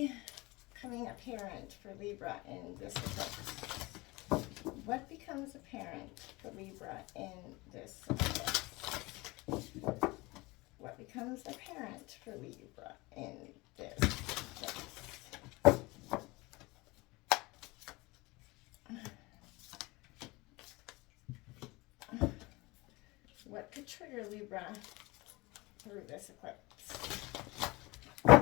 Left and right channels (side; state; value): right; quieter; 23.2 dB